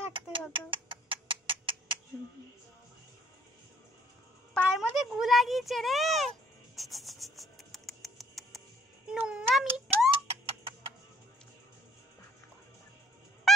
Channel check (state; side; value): normal; both; correlation 0.59